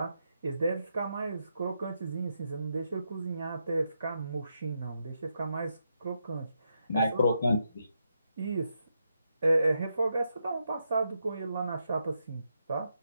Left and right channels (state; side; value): inverted; both; correlation -0.83